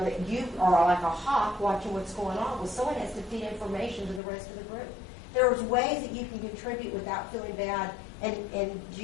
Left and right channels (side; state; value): right; drops out; at 4.2 s